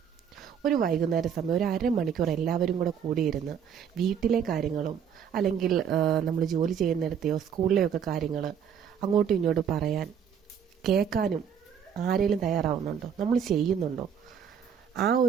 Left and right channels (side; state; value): left; quieter; 7.9 dB